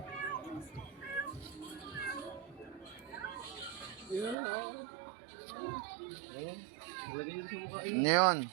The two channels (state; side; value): drops out; left; at 4.4 s